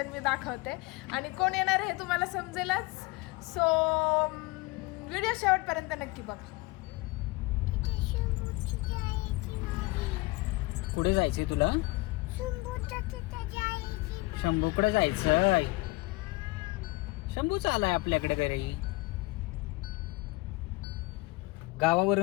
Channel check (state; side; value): quieter; right; 22.8 dB